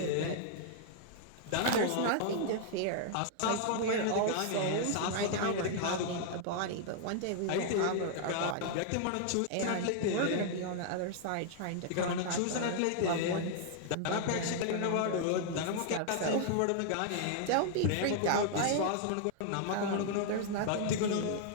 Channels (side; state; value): both; different; correlation 0.00